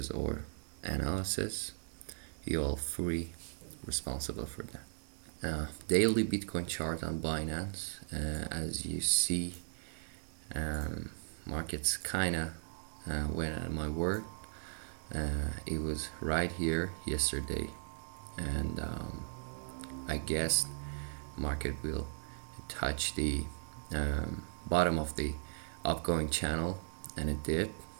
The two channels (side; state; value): left; silent; digital silence